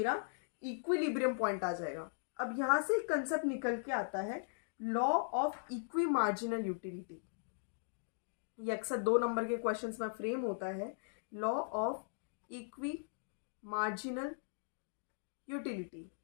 इक्विलिब्रियम पॉइंट आ जाएगा। अब यहाँ से कंसेप्ट निकल के आता है law of equi marginal utility. ये अक्सर 2 नंबर के क्वेश्चंस में फ्रेम होता है, law of equi marginal utility.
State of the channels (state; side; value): silent; right; digital silence